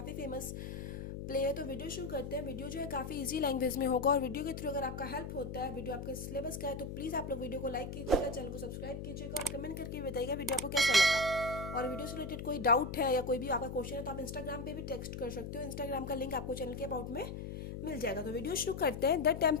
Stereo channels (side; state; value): left; noise; hum, 7 dB below the sound